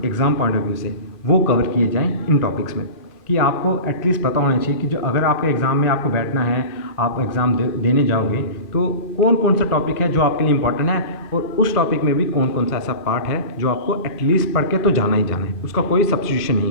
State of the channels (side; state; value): right; late; 1.9 ms